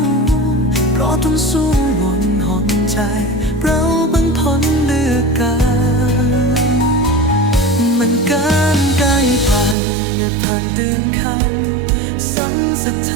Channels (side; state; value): left; drops out; at 9.8 s